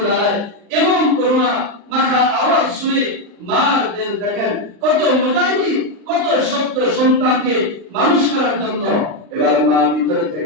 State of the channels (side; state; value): left; late; 39 ms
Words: আলাইহি এমন করুণা মাখা আওয়াজ শুনে মার দিল দেখেন কত মুজাহিদ, কত শক্ত সন্তানকে মানুষ করার জন্য। এবার মা ভিতরে